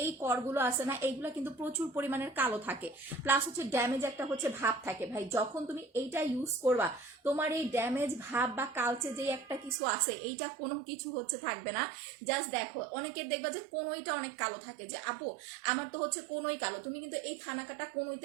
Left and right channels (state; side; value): drops out; left; at 9.8 s